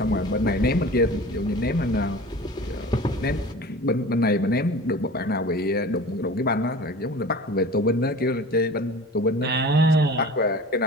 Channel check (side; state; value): both; normal; correlation 0.39